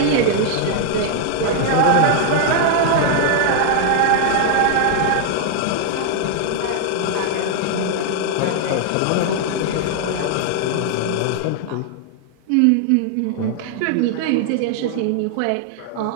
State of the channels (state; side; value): different; both; correlation 0.00